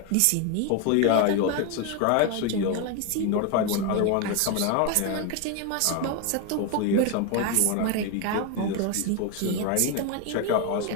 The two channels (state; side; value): different; both; correlation 0.01